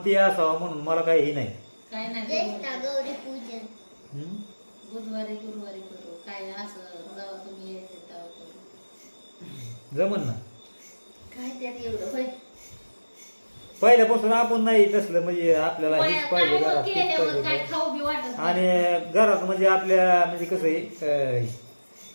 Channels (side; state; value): both; inverted; correlation -1.00